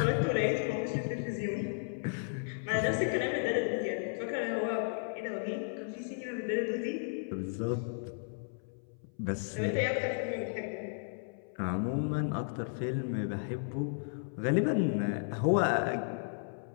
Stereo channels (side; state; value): right; silent; 55 dB below the other